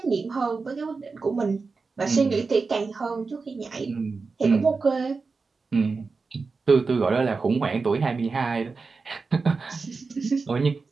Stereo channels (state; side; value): quieter; left; 4.4 dB